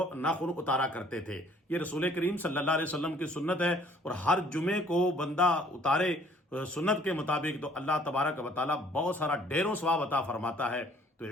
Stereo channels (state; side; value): normal; both; correlation 0.59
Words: ناخن اتارا کرتے تھے۔ یہ رسول کریم صلی اللہ علیہ وسلم کی سنت ہے، اور ہر جمعے کو بندہ اتارے سنت کے مطابق تو اللہ تبارک و تعالیٰ بہت سارا ڈھیروں ثواب عطا فرماتا ہے۔ تو